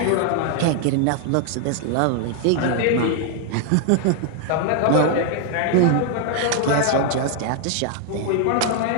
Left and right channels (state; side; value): different; both; correlation 0.00